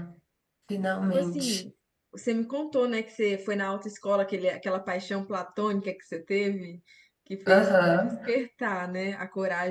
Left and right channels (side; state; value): both; identical; correlation 1.00